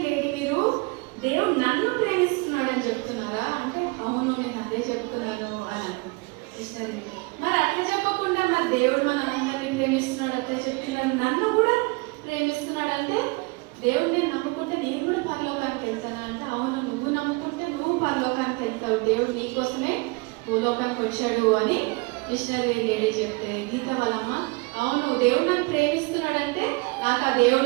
లేడీ మీరు దేవుడు నన్ను ప్రేమిస్తున్నాడు అని చెప్తున్నారా అంటే అవును నేను అదే చెప్తున్నాను అని. మిషనరీ మరి అట్లా చెప్పకుండా మరి దేవుడు మన అందరినీ ప్రేమిస్తున్నాడు అట్లా చెప్తున్నాడు, నన్ను కూడా ప్రేమిస్తున్నాడు అంటే దేవుడు నేను నమ్ముకుంటే నేను కూడా పరలోకానికి వెళ్తాను అంటే అవును నువ్వు నమ్ముకుంటే నువ్వు పరలోకానికి వెళ్తావు, దేవుడు నీకోసమే భూలోకానికి వచ్చాడు అని మిషనరీ లేడీ చెప్తే గీత వాళ్ళమ్మ అవును దేవుడు నన్ను ప్రేమిస్తున్నాడంటే నాకు ఆ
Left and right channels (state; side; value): quieter; left; 27.6 dB